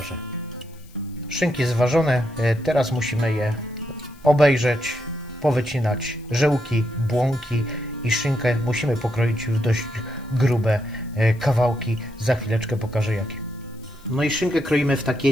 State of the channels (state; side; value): noise; left; hiss, 28 dB below the sound